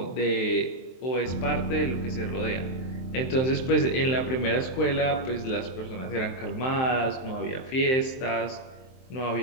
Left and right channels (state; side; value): late; right; 23 ms